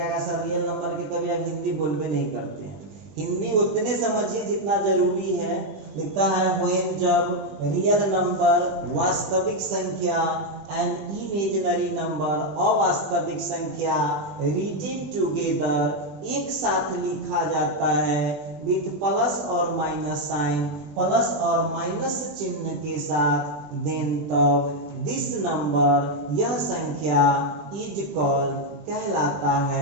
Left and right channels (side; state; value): left; late; 20 ms